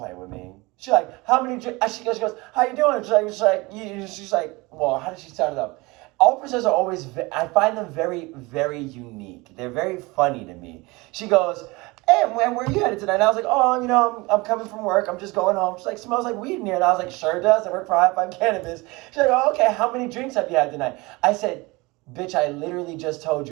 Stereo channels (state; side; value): quieter; left; 23.7 dB